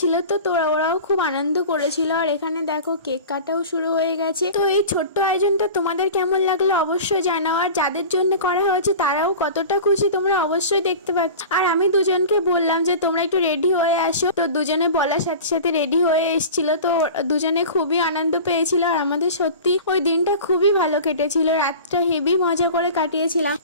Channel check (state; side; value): inverted; both; correlation -0.36